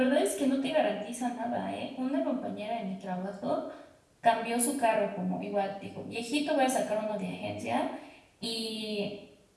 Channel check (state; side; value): identical; both; correlation 1.00